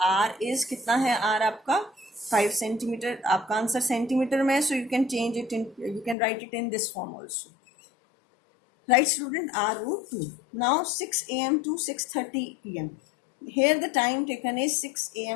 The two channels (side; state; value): right; drops out; at 6.2 s